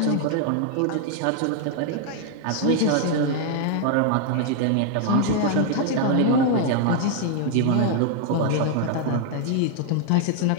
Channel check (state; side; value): different; both; correlation 0.00